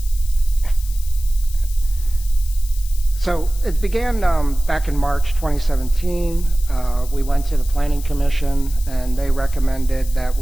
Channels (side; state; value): left; noise; hiss, 16 dB below the sound